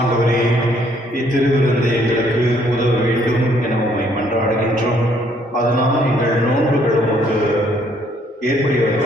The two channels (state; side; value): normal; both; correlation 0.66